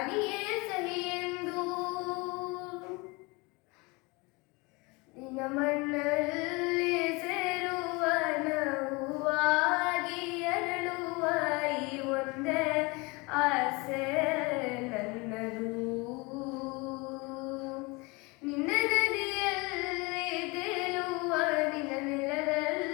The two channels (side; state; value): right; quieter; 26.4 dB